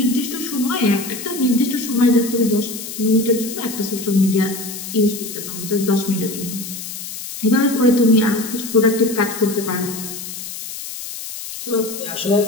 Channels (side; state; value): left; noise; hiss, 9 dB below the sound